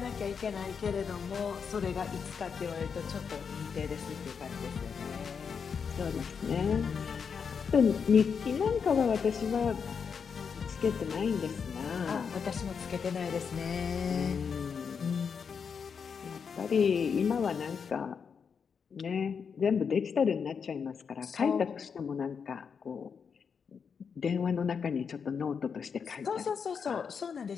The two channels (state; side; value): quieter; right; 6.3 dB